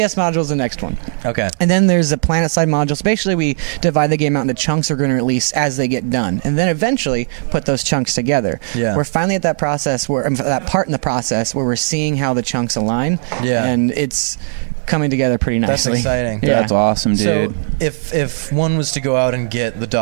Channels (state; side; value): silent; left; digital silence